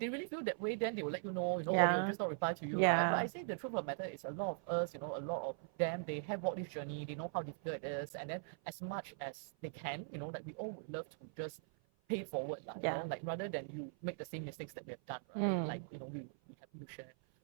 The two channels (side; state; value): left; silent; 51 dB below the other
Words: really feel that way, then they will let you know, or they will just not reply to you, right? But I say the truth of the matter is a lot of us, a lot of them, they have walked this journey, they know how difficult it is. And then as much as they can, like we all would love to just pay it forward, like rather than you make the same mistakes that we have done, right? Like, we would be happy to share.